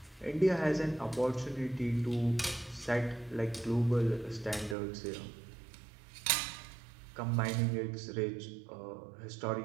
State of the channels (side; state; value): left; drops out; at 4.8 s